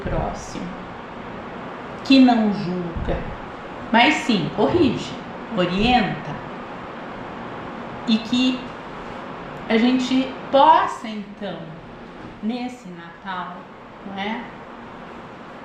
próximo, que não julga, mas sim corrige, orienta, e que a gente possa então, nesse Natal, não é?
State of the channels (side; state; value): both; identical; correlation 1.00